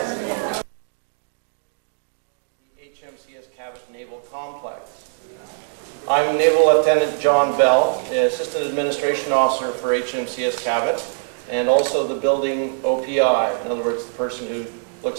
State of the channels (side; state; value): left; silent; digital silence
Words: HMCS Cabot Naval Complex. I'm Naval Lieutenant John Bell, the Assistant Administration Officer for HMCS Cabot, and also the building OPI, in other words, the person who